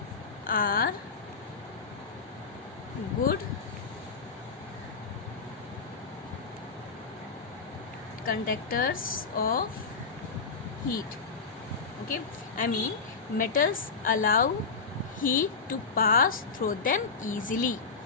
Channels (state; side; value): quieter; right; 4.8 dB